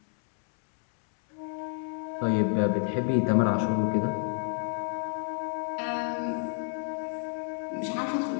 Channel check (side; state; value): right; silent; 58 dB below the other